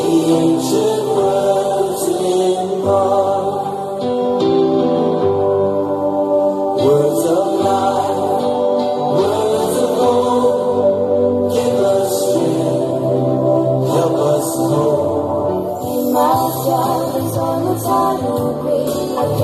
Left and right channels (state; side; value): identical; both; correlation 1.00